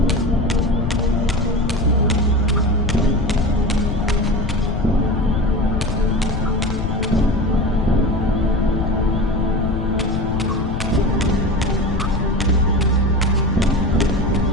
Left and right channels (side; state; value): left; noise; rumble, 2 dB below the sound